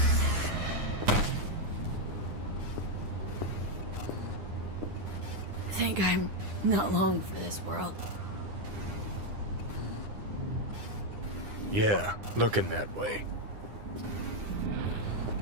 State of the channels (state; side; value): late; left; 9.8 ms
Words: Think I'm not long for this world. Yeah, looking that way.